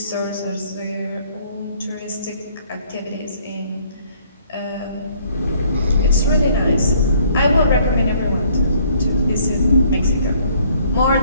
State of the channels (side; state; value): both; inverted; correlation -0.61